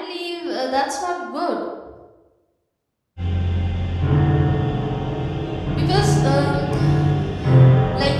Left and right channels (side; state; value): both; identical; correlation 1.00